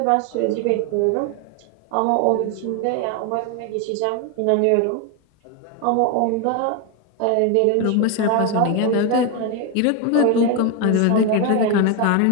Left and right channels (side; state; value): both; different; correlation 0.02